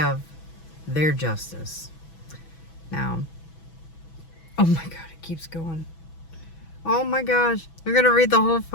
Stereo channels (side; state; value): right; late; 6.1 ms